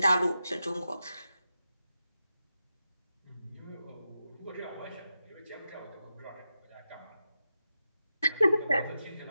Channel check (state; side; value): inverted; both; correlation -0.89